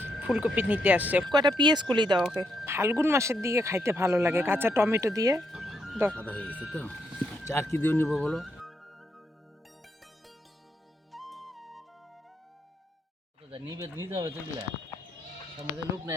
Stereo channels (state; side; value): normal; both; correlation 0.78